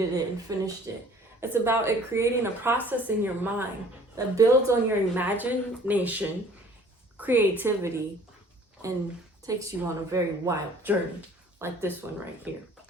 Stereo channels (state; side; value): normal; both; correlation 0.53